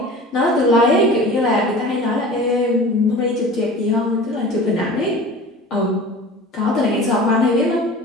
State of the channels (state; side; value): normal; both; correlation 0.39